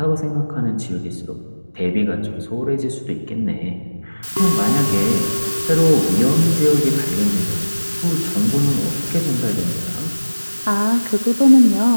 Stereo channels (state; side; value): inverted; both; correlation -1.00